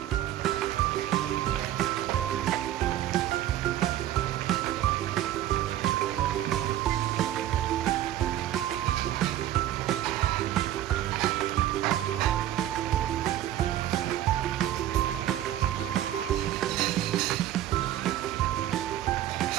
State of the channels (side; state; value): left; quieter; 12.7 dB